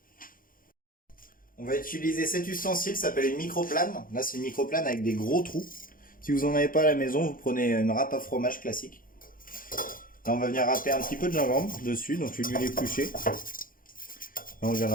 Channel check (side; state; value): right; late; 0.40 ms